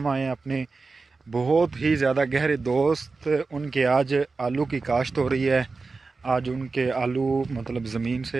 आए हैं अपने बहुत ही ज़्यादा गहरे दोस्त उनके आज आलू की काश्त हो रही है। आज उनके आलू मतलब ज़मीन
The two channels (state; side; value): quieter; left; 4.1 dB